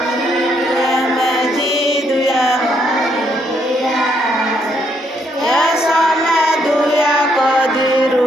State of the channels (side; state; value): both; normal; correlation 0.73